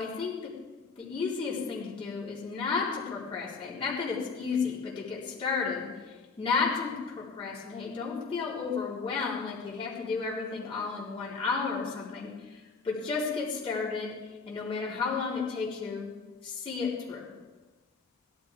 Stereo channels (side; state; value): right; quieter; 4.7 dB